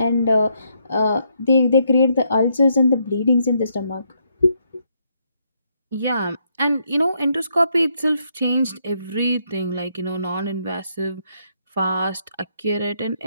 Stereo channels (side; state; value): both; inverted; correlation -0.75